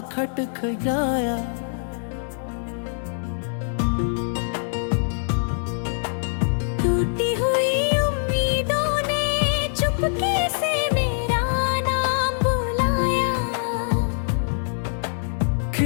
खटखटाया। टूटी हुई उम्मीदों ने चुपके से मेरा नाम बुलाया।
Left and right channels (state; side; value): silent; right; digital silence